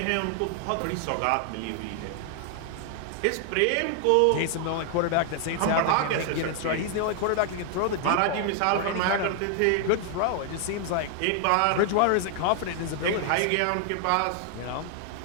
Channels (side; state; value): both; different; correlation 0.00